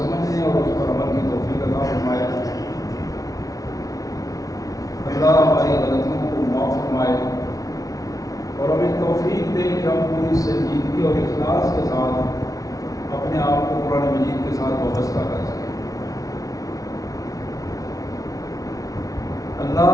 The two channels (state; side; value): late; right; 0.17 ms